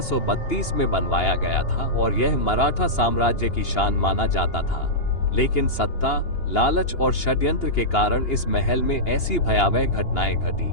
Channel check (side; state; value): right; late; 2.8 ms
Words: में बनवाया गया था और यह मराठा साम्राज्य की शान माना जाता था। लेकिन सत्ता, लालच और षड्यंत्र के कारण इस महल में ऐसी भयावह घटनाएं घटी